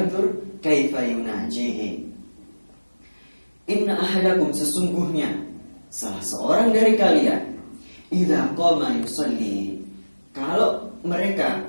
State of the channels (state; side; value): inverted; both; correlation -1.00